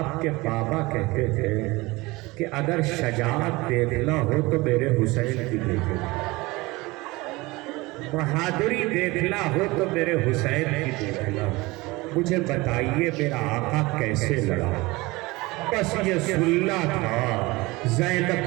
کے بابا کہتے تھے کہ اگر شجاعت دیکھنا ہو تو میرے حسین کی دیکھو، بہادری دیکھنا ہو تو میرے حسین کی دیکھنا. مجھے بتائیے میرا آقا کیسے لڑا؟ بس یہ سننا تھا.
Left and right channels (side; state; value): left; quieter; 22.2 dB